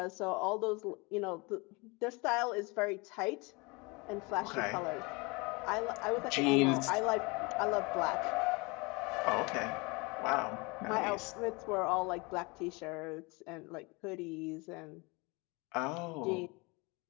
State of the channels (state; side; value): quieter; right; 27.4 dB